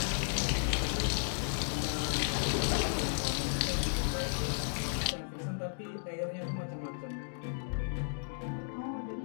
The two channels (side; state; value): right; silent; digital silence